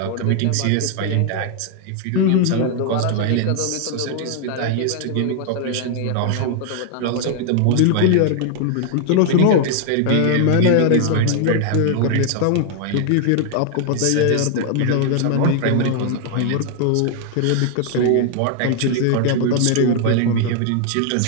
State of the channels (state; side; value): different; both; correlation 0.00